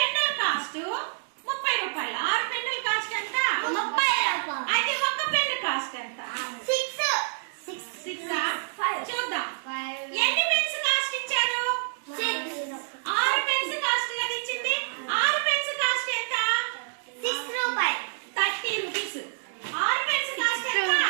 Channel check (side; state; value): left; silent; digital silence